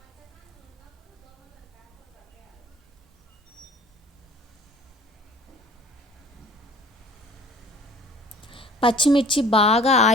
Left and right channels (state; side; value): normal; both; correlation 0.48